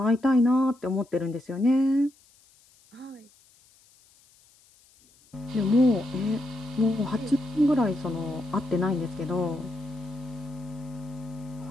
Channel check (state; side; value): noise; left; hiss, 30 dB below the sound